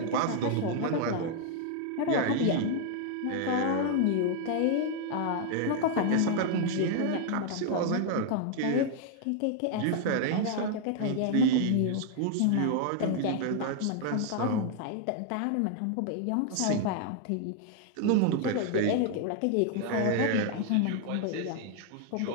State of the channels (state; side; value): different; both; correlation 0.00